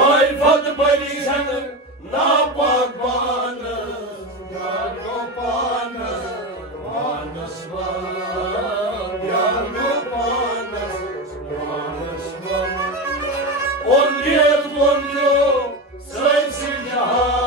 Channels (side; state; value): both; normal; correlation 0.19